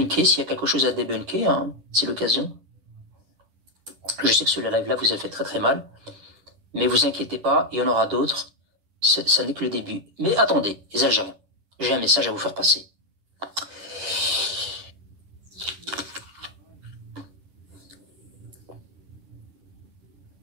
s'il y a quelque chose à débunker, hein, c'est l'occasion. Je sais que ce live-là vous a fait très très mal, mais vous inquiétez pas, il y en aura d'autres. Ça n'est que le début. Mais attendez, les Algériens, j'ai un message à vous faire passer.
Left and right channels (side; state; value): left; late; 10 ms